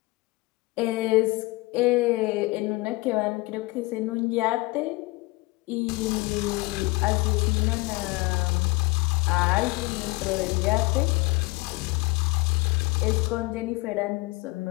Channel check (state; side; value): quieter; right; 23.0 dB